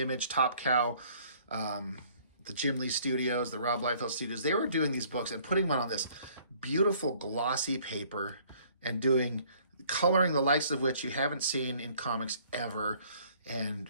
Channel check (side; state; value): both; inverted; correlation -0.58